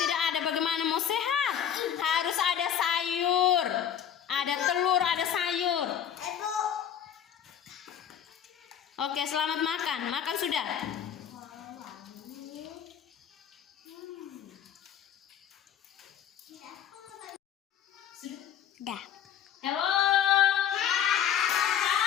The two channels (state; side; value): quieter; right; 9.4 dB